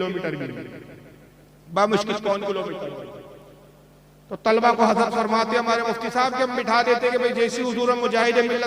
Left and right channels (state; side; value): identical; both; correlation 1.00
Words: भी, बामुश्किल 1 किलोमीटर। तो तलबा को हजरत फरमाते हमारे मुफ्ती साहब के हम बिठा देते कि भाई जैसे हुजूर मुजाहिद